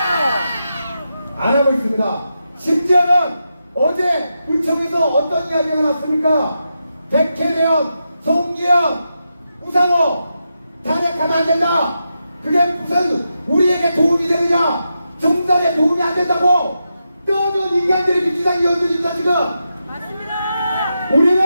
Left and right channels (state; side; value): inverted; both; correlation -0.87